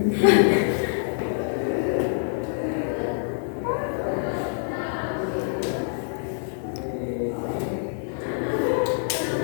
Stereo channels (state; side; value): silent; right; 61 dB below the other